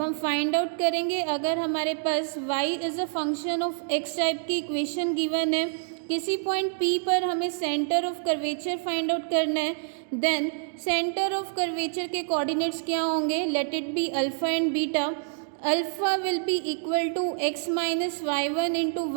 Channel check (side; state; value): left; silent; digital silence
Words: हम find out करेंगे, अगर हमारे पास y is a function of x type की equation given है, किसी point P पर हमें centre of curvature find out करना है, देन सेंटर ऑफ कर्वेचर के कोऑर्डिनेट्स क्या होंगे, let it be alpha and beta. Alpha will be equal to x minus y1 into